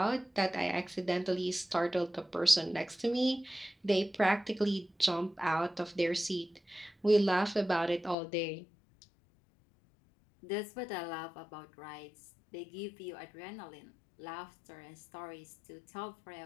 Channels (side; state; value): right; drops out; at 8.2 s